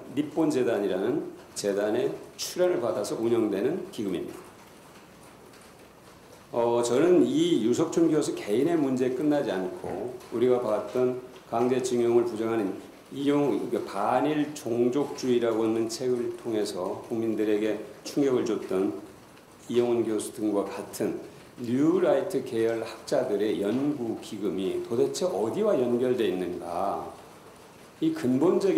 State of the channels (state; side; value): identical; both; correlation 1.00